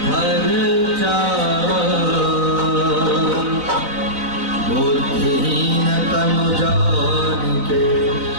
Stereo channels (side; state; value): left; late; 3.9 ms